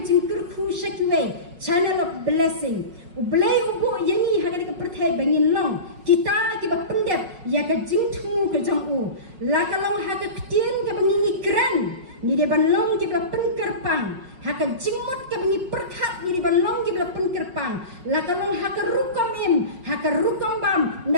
jing kurku shakiwe channel of blessing ublei ubu yang ni ha ka perthai bangin long kita ki ba pendep ya ka jing thu ka jong u la ka long ha ka ktien ka bangin ni kran ni de ban long ki ba penkerpang ha ka jingmot ka bangi perkhat ni de ban long ki ba penkerpang la ka long ha ka rukom ha ka rukom bam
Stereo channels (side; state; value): left; late; 5.5 ms